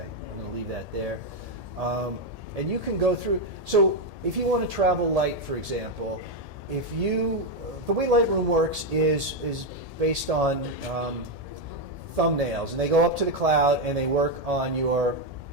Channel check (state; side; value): late; left; 1.7 ms